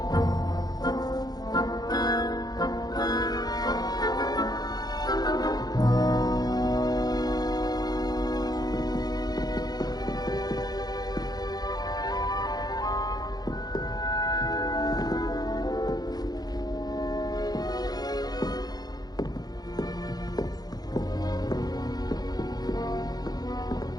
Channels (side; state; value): right; late; 0.19 ms